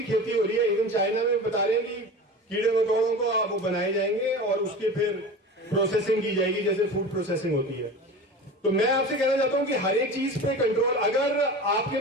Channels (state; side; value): normal; both; correlation 0.33